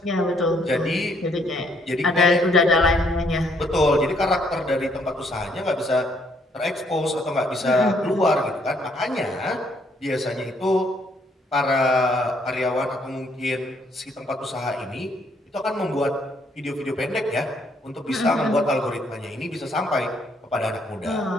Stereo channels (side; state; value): both; normal; correlation 0.68